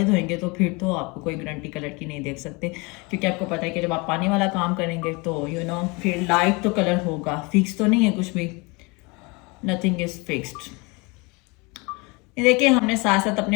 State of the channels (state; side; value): quieter; right; 27.5 dB